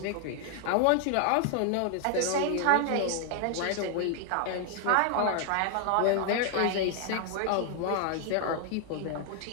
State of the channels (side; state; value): both; different; correlation 0.00